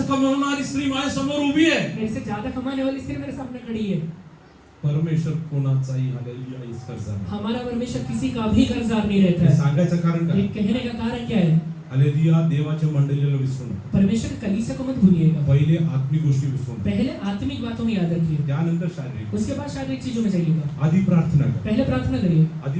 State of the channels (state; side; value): identical; both; correlation 1.00